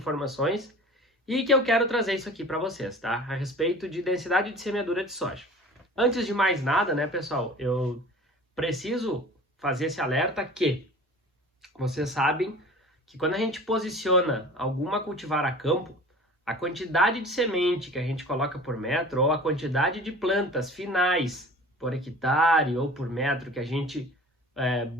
E que eu quero trazer isso aqui para vocês, tá? A respeito de densidade de semeadura de soja. Antes de mais nada, né, pessoal, eu preciso fazer esse alerta que vocês sabem que quando a gente posiciona alguma cultivar a campo, a quantidade de semente que a gente coloca por metro ou a quantidade de plantas finais por hectare ou por metro que a gente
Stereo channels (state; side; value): normal; both; correlation 0.42